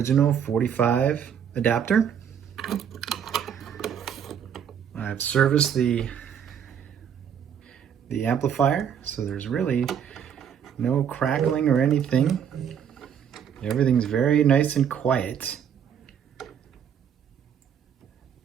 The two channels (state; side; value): quieter; left; 8.3 dB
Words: 45 adapter. I've serviced the amplifier, so there's really no crackling or anything. Everything's very nice and quiet.